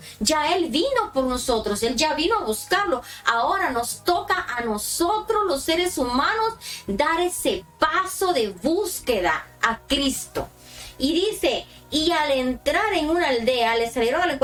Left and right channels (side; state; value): both; identical; correlation 1.00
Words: Ya Él vino por nosotros, Él ya vino a buscarlo. Ahora nos toca a nosotros, los seres humanos, dar ese paso de búsqueda a Cristo. Y dice, y al entrar en una aldea, le salieron al